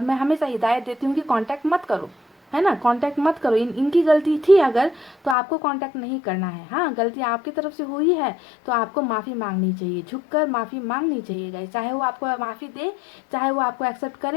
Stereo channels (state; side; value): drops out; right; at 5.4 s